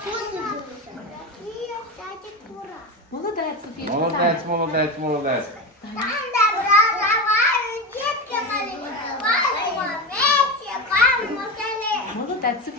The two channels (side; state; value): both; normal; correlation 0.20